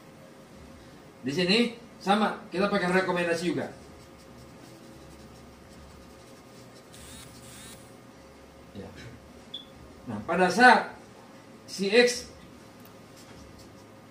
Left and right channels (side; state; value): both; identical; correlation 1.00